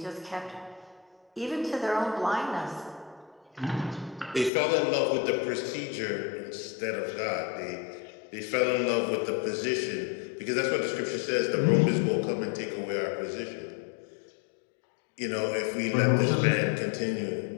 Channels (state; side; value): drops out; right; at 4.5 s